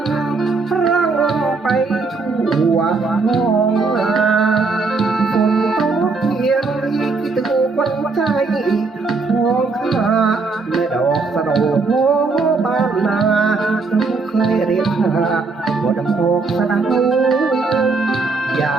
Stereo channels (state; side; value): quieter; left; 4.1 dB